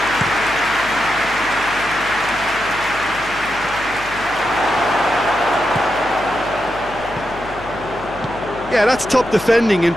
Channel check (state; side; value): noise; left; hum, 17 dB below the sound